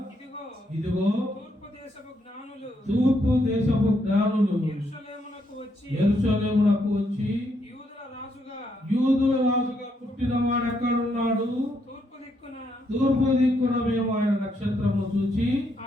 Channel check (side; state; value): both; normal; correlation 0.76